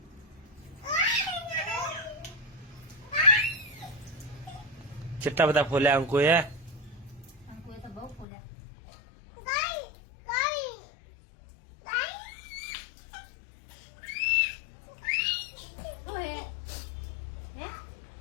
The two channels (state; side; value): drops out; right; at 8.2 s